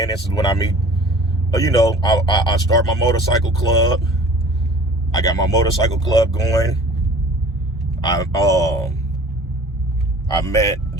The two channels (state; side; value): normal; both; correlation 0.46